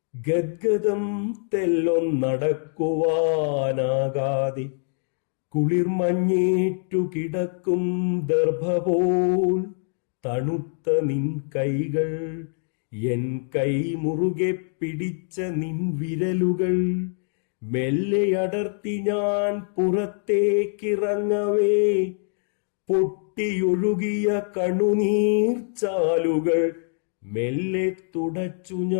ഗദ്ഗദം തെല്ലൊന്നടക്കുവാനാകാതെ കുളിർമഞ്ഞേറ്റു കിടക്കും ദർഭപോൽ തണുത്ത നിൻ കൈകൾ, എൻ കൈ മുറുകെ പിടിച്ച നിൻ വിരലുകൾ മെല്ലെ അടർത്തി ഞാൻ പുറത്തേക്കിറങ്ങവേ. പൊട്ടിയൊഴുകിയ കണ്ണുനീർ ചാലുകൾ മെല്ലെ തുടച്ചു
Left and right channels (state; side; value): silent; right; digital silence